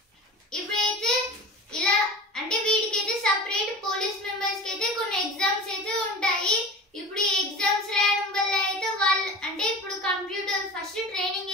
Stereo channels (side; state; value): both; normal; correlation 0.34